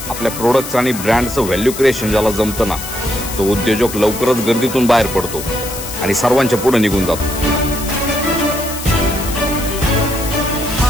आपल्या प्रोडक्ट्स आणि ब्रँडचं value creation ज्याला जमतं ना, तो उद्योजक लवकरच गर्दीतून बाहेर पडतो आणि सर्वांच्या पुढे निघून जातो.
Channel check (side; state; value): left; noise; hiss, 9 dB below the sound